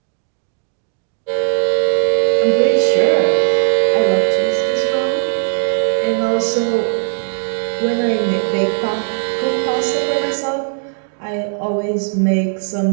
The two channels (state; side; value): silent; left; digital silence